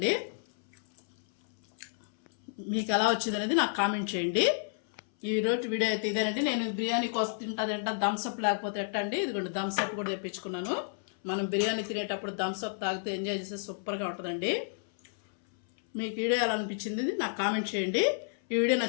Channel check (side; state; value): right; silent; 57 dB below the other